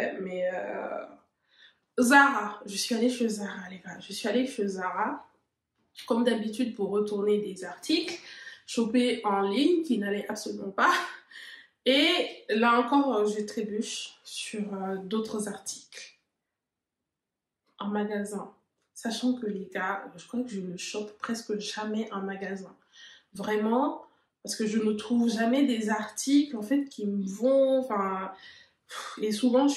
mais Zara. Je suis allée chez Zara, les gars. Je suis allée chez Zara, comme d'habitude, pour retourner des articles, choper en ligne, qui n'allait absolument pas. Et là encore, je trébuche sur d'autres articles en magasin. Sachant que les gars, je crois que je ne chope presque jamais en magasin. Vraiment, parce que je ne trouve jamais des articles en fait qui me vont, enfin, et souvent je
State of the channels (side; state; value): both; identical; correlation 1.00